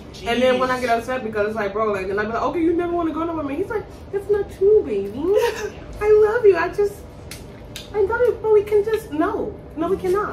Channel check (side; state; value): both; identical; correlation 1.00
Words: And then when I get upset because it's like, bro, like, then I be like, okay, you never want to go nowhere with me. He's like, it's not true, baby. I love you. I love you, but we can just, no, we